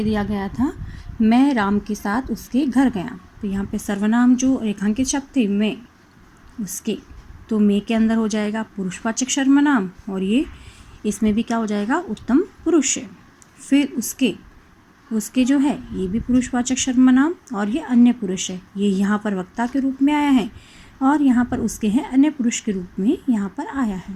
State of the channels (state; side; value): identical; both; correlation 1.00